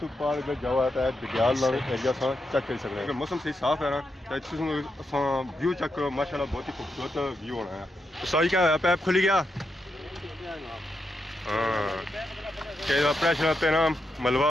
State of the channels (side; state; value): both; normal; correlation 0.84